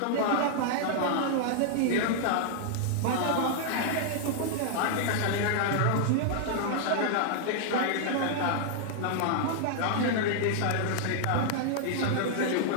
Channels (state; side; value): different; both; correlation -0.01